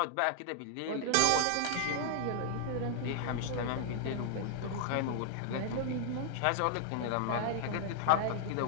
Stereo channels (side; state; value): both; different; correlation 0.00